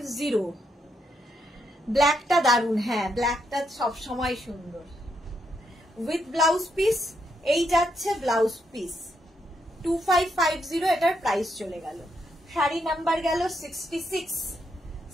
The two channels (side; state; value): both; normal; correlation 0.78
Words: ব্ল্যাকটা দারুন, হ্যাঁ ব্ল্যাকটা সবসময় সুন্দর। উইথ ব্লাউজ পিস, এই যাচ্ছে ব্লাউজ পিস। 2550 এটার প্রাইস চলে গেল। শাড়ি নাম্বার গেল 66।